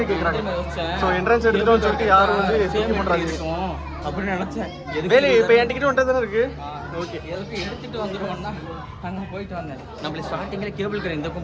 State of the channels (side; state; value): both; identical; correlation 1.00